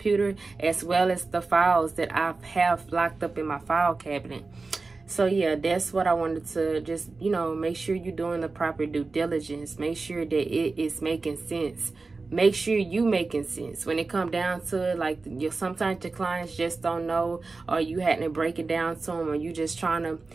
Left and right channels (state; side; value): quieter; left; 3.9 dB